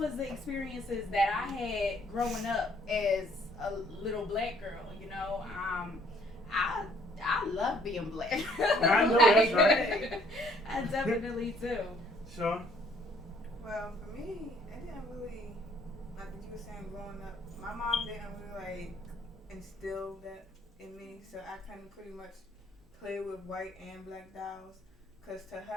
the experiences that I had growing up as a little black girl, you know. I love being black. I know that's right. I definitely do. Sean? Well, for me, it didn't really, like what you were saying growing up, my mom didn't really like instill that in me, so I couldn't pretty much play with white and black dolls, because to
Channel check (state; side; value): normal; both; correlation 0.63